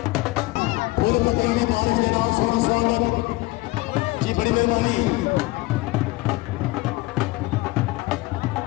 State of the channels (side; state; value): right; quieter; 21.1 dB